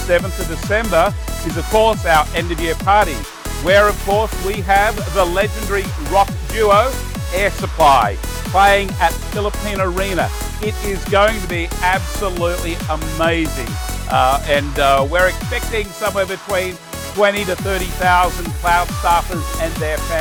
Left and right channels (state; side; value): identical; both; correlation 1.00